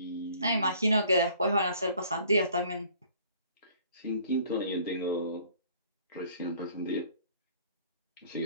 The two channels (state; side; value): inverted; both; correlation -0.55